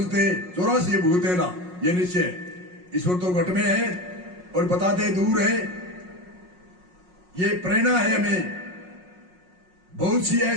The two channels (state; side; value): late; left; 5.5 ms